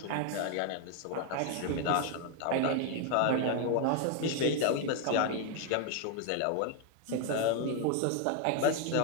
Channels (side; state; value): both; different; correlation 0.01